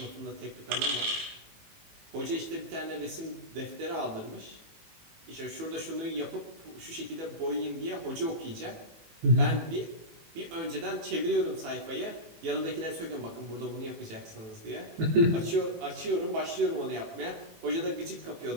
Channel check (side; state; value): left; late; 18 ms